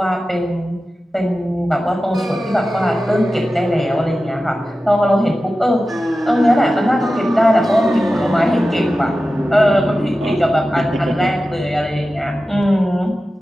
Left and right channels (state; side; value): normal; both; correlation 0.94